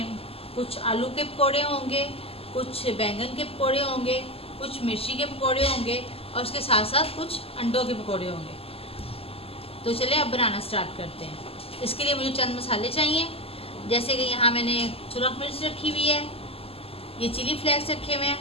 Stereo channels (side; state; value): right; late; 0.28 ms